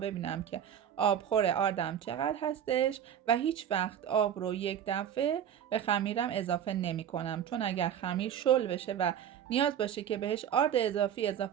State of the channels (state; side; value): quieter; left; 9.4 dB